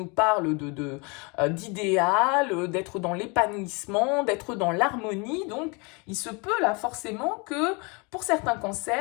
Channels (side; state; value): right; quieter; 30.4 dB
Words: parle d'idéal, d'être dans l'épanouissement, d'être dans l'harmonie. Donc, il se peut là forcément que pour certains